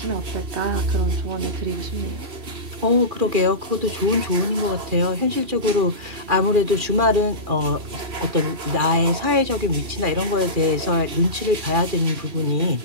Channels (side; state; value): left; late; 3.0 ms